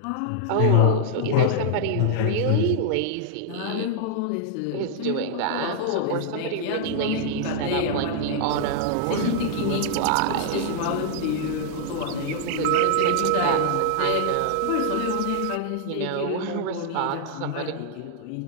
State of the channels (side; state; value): both; different; correlation 0.00